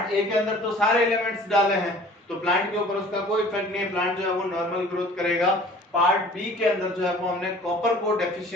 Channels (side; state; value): both; normal; correlation 0.48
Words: ए के अंदर तो सारे एलिमेंट्स डाले हैं तो प्लांट के ऊपर उसका कोई इफेक्ट नहीं है, प्लांट जो है वो नॉर्मल ग्रोथ करेगा। पार्ट बी के अंदर जो है वो हमने कॉपर को